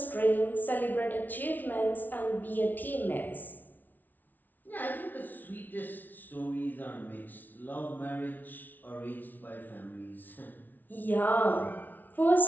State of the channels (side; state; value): right; late; 0.083 ms